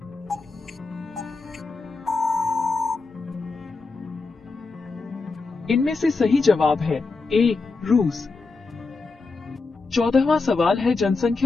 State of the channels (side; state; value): right; quieter; 4.0 dB